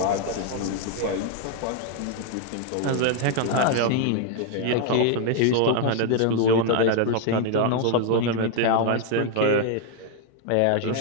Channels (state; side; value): different; both; correlation 0.00